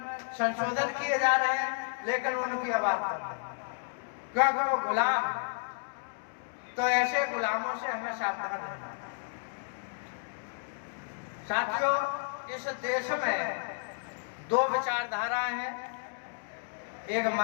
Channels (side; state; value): right; silent; digital silence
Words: संशोधन किए जा रहे हैं, लेकिन उनकी आवाज कम है क्योंकि वो गुलाम है। तो ऐसे गुलामों से हमें सावधान रहना है। साथियों, इस देश में दो विचारधाराएं हैं। एक